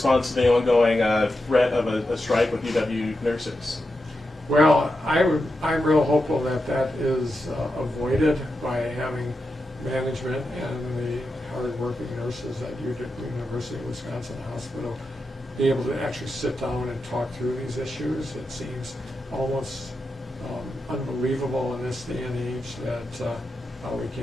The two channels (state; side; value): normal; both; correlation 0.88